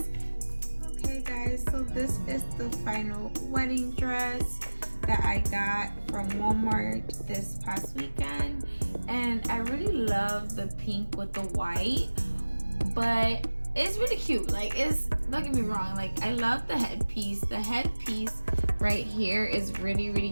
Okay guys, so this is the final wedding dress that I got from Walmart this past weekend, and I really love the pink with the white, but it's really cute. Like, it's, don't get me wrong, like I love the headpiece. The headpiece right here is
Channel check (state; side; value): inverted; both; correlation -1.00